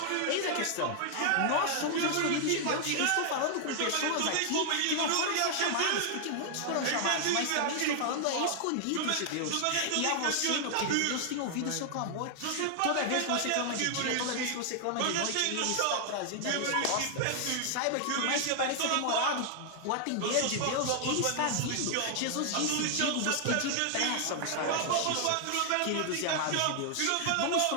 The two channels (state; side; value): different; both; correlation 0.00